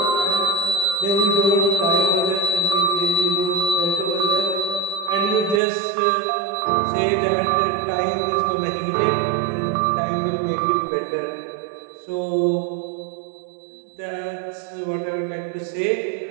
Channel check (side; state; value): left; drops out; at 5.6 s